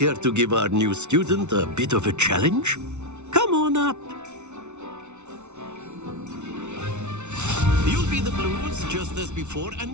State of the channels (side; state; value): left; late; 0.82 ms